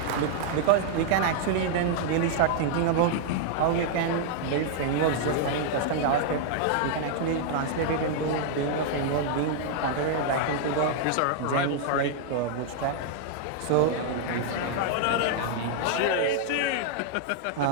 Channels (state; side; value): different; both; correlation -0.01